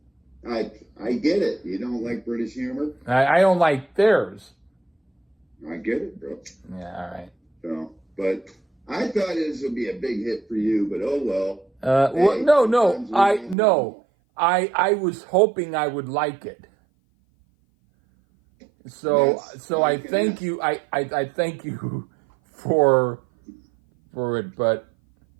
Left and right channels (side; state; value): left; drops out; at 13.6 s